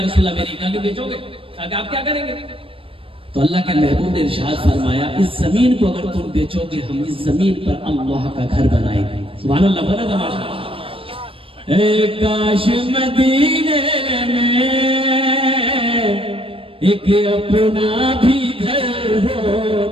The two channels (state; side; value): late; left; 0.26 ms